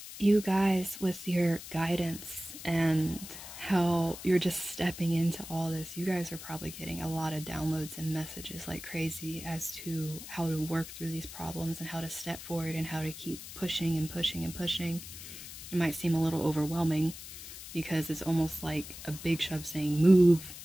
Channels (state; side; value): noise; left; hiss, 12 dB below the sound